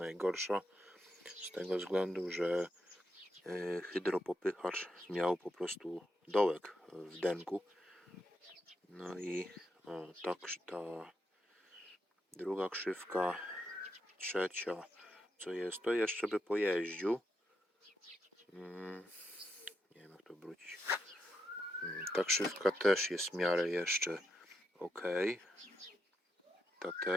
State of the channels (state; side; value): normal; both; correlation 0.82